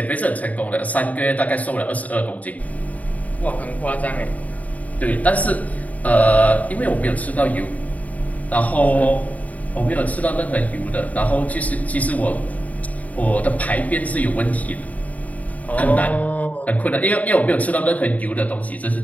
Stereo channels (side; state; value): right; late; 0.072 ms